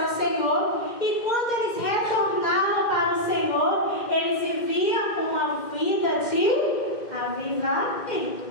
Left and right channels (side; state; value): right; late; 2.1 ms